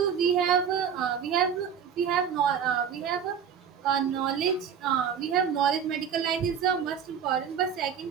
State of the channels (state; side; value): quieter; left; 7.7 dB